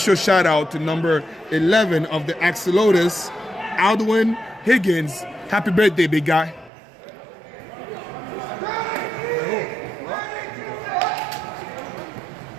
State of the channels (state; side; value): drops out; left; at 6.7 s